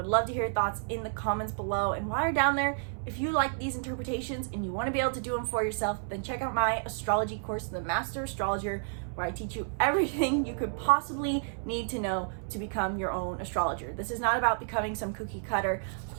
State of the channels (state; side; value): silent; left; 57 dB below the other